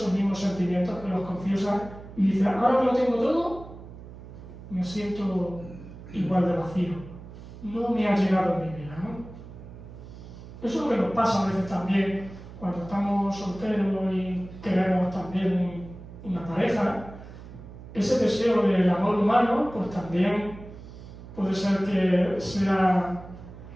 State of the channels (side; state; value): right; noise; hum, 15 dB below the sound